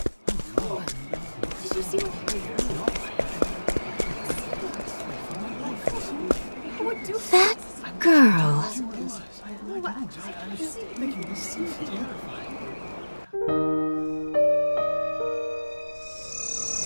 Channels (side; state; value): both; inverted; correlation -1.00